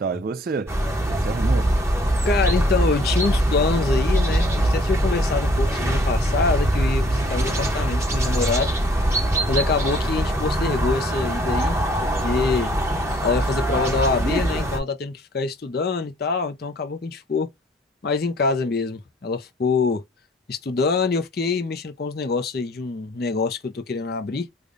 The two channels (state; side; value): normal; both; correlation 0.58